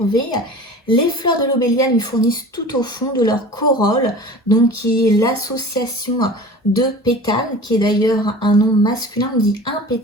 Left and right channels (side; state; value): both; normal; correlation 0.39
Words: Les fleurs de l'obélia lui fournissent tout au fond de leur corolle, donc qui est l'association de pétales, qui est d'ailleurs un nom masculin, on dit un